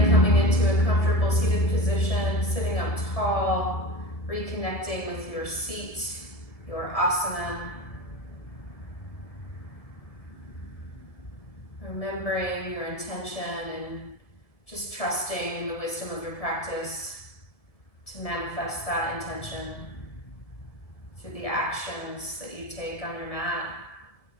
coming into a comfortable seated position, sitting up tall, reconnecting with your seat, your asana. Remembering your intention and just trusting in the wisdom of your practice to manifest that intention through the actions that you take on your mat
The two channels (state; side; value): late; right; 1.7 ms